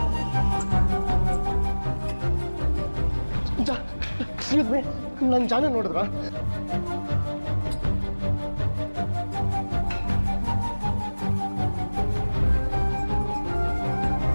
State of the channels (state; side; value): inverted; both; correlation -1.00